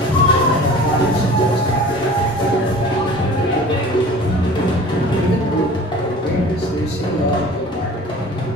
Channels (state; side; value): normal; both; correlation 0.43